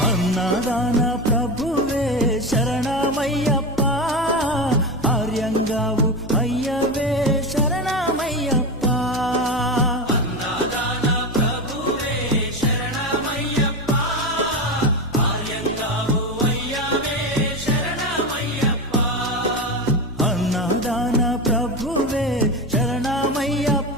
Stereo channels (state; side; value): normal; both; correlation 0.20